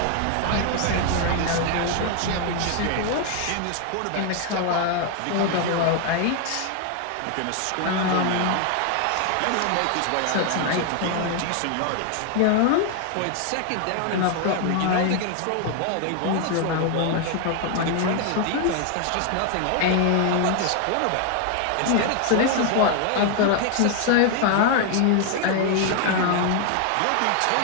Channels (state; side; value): different; both; correlation 0.00